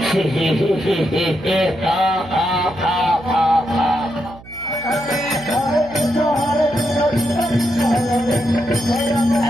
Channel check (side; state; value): right; noise; hum, 20 dB below the sound